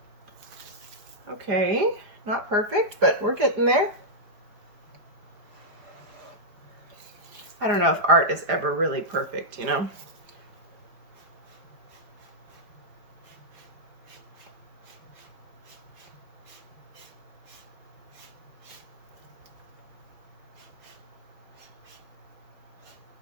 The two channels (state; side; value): late; left; 4.9 ms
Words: Okay, not perfect, but we're getting there. I don't know if art is ever really perfect, you know?